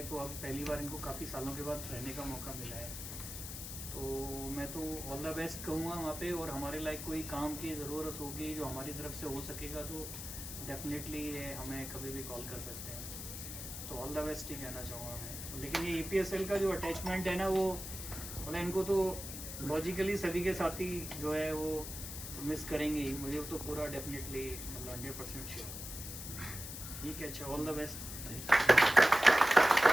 तो अब पहली बार इनको काफ़ी सालों के बाद रहने का मौका मिला है। तो मैं तो ऑल द बेस्ट कहूँगा वहाँ पे, और हमारे लायक कोई काम की ज़रूरत होगी जो हमारी तरफ से हो सकेगा तो डेफिनेटली हमें कभी भी कॉल कर सकते हैं। तो ऑल द बेस्ट ही कहना चाहूँगा मैं। लेकिन ये EPSL का जो अटैचमेंट है ना, वो मतलब इनको तो लॉजिकली सभी के साथ ही जो है वो मिस करेंगे ही, मुझे तो पूरा डेफिनेटली मतलब 100% श्योर। ठीक है, अच्छा, all the best.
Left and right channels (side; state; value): left; noise; hiss, 8 dB below the sound